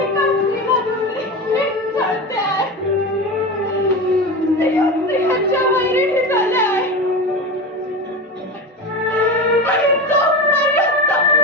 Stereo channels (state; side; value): normal; both; correlation 0.24